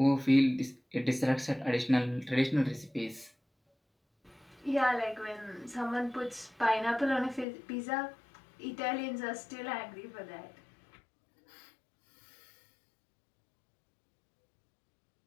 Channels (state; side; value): drops out; right; at 7.5 s